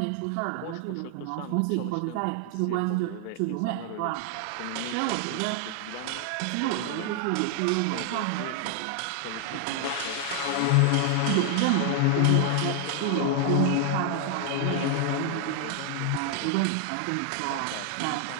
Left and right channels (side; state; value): both; different; correlation 0.00